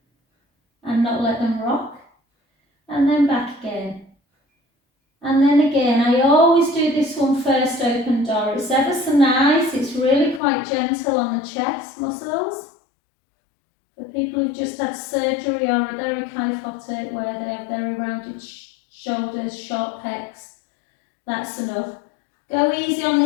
and not let them rock. And then back again. And then again, I always do this one first, open door. It's ever so nice. It's really quite gentle on the chest muscles. For people who've just had surgery or are very kyphotic, where they have very rounded shoulders, short pecs, that's enough. Go easy on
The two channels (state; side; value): drops out; right; at 10.4 s